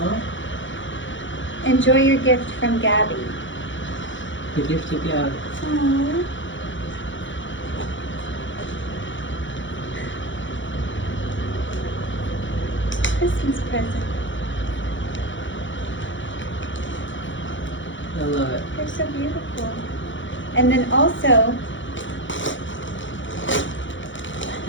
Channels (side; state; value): right; late; 0.55 ms